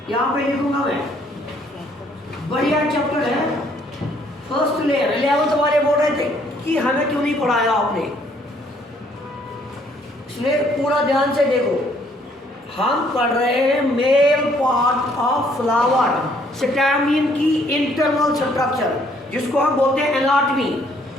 यहाँ पे लिखूंगा मैं, बढ़िया चैप्टर है फर्स्ट लेयर. 11th वाले बोल रहे थे कि हमें क्यों नहीं पढ़ाया आपने. इसलिए पूरा ध्यान से देखो, हम पढ़ रहे हैं male part of flower, stamen की इंटरनल स्ट्रक्चर, जिसको हम बोलते हैं एनाटमी,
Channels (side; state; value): both; normal; correlation 0.65